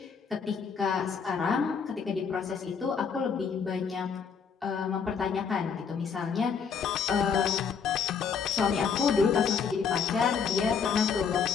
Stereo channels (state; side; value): quieter; right; 6.3 dB